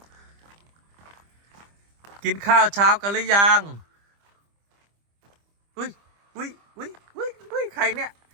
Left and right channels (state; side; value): late; left; 25 ms